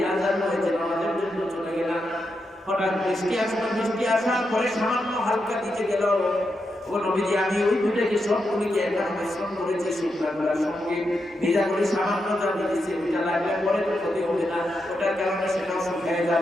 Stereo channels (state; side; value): normal; both; correlation 0.85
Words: আযান হয়েছে নামাজের জন্য চলে গেলাম হঠাৎ বৃষ্টি আসার পরে সামান্য হালকা দিতে গেল ওগো নবীজি আমি ওই দুটোকে সবগুলিকে একবার মিশ্রণ করেছি শুকনা করার সঙ্গে ভেজা করে সামান্য যা দিয়েছি ওইটা লাগলে পরে তো ক্ষতি হবে না ওটার কারণে সেটাও শুকিয়ে